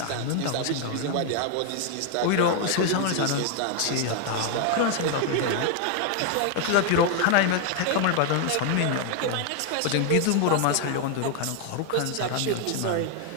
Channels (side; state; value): both; different; correlation 0.01